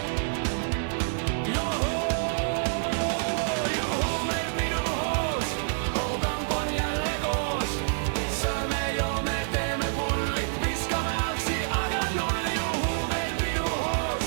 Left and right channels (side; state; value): left; silent; digital silence